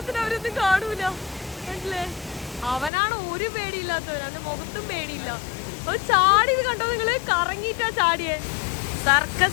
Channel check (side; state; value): right; drops out; at 2.9 s